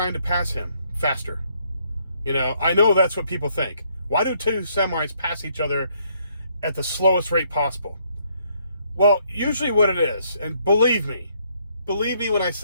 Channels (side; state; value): both; inverted; correlation -0.69